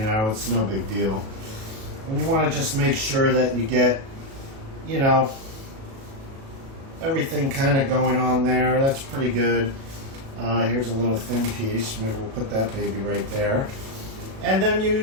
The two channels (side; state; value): left; late; 37 ms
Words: it's no big deal. And you want to just make sure that you get, you know, everything kind of going on there. That's pretty good. Here's a little thin piece. Maybe we'll put that baby right there. And then